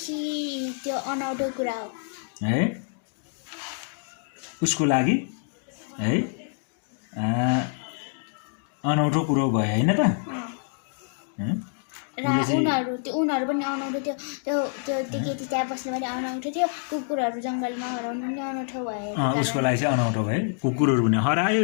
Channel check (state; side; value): silent; right; 56 dB below the other